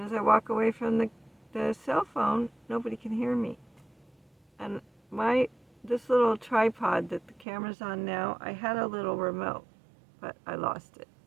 as I walk away from the cell phone, nobody can hear me. And this little tripod that the camera's on now, I had a little remote, but I lost it.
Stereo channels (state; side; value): drops out; left; at 7.5 s